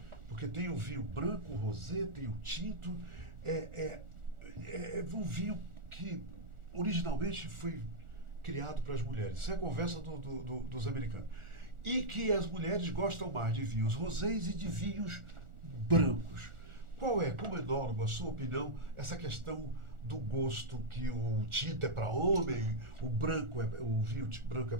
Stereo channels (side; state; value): left; late; 1.4 ms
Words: porque tem o vinho branco, o rosé, tem o tinto, é um vinho que originalmente foi criado para as mulheres. Isso é a conversa dos americanos. E que as mulheres gostam mais de vinhos rosés e de vinhos brancos. Qual é, como enólogo, a sua opinião, essa questão do gosto que o tinto é para homem, o vinho branco é